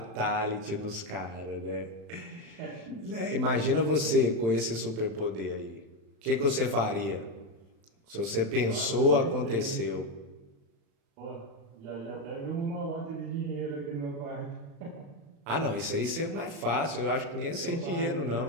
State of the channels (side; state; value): left; late; 35 ms